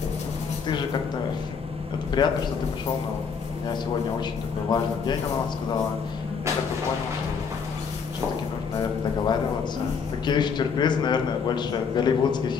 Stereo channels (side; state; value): right; quieter; 6.0 dB